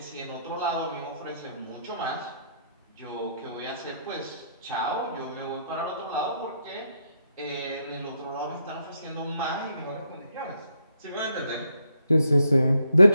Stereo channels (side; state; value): both; inverted; correlation -0.76